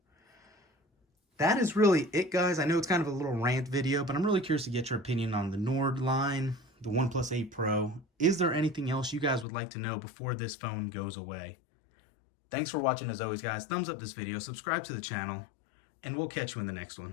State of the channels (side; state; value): right; drops out; at 9.5 s